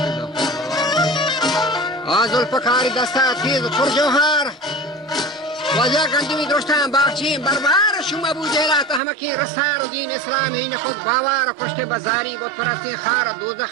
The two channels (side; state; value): left; drops out; at 9.0 s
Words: زلفکاری دسته تیز پر جوهر وجه گندمی درشتن باغچین بربر شما ابو جهلات احمقی رسار و دین اسلامی این خود باور کشت بزاری بود پرستی خار